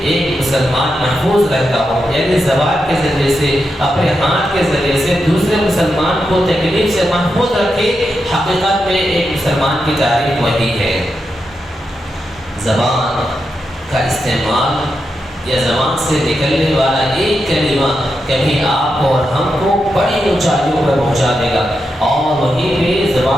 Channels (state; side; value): normal; both; correlation 0.86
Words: ایک مسلمان محفوظ رہتا ہو، یعنی زبان کے ذریعے سے، اپنے ہاتھ کے ذریعے سے دوسرے مسلمان کو تکلیف سے محفوظ رکھے۔ حقیقت میں ایک مسلمان کی تعریف وہی ہے۔ زبان کا استعمال یا زبان سے نکلنے والا ایک کلمہ کبھی آپ کو اور ہم کو بڑی اونچائیوں پر پہنچا دے گا، اور وہیں پہ